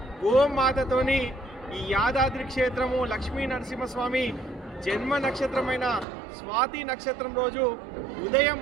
గోమాతతోని ఈ యాదాద్రి క్షేత్రము లక్ష్మీ నరసింహస్వామి జన్మ నక్షత్రమైన స్వాతి నక్షత్రం రోజు ఉదయం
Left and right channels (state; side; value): drops out; left; at 6.1 s